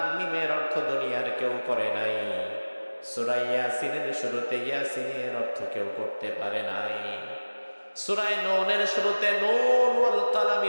মিমের অর্থ দুনিয়ার কেউ করে নাই। সূরা ইয়াসিনের শুরুতে ইয়াসিনের অর্থ কেউ করতে পারে নাই। সূরা নূনের শুরুতে নূন ওয়াল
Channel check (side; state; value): both; inverted; correlation -1.00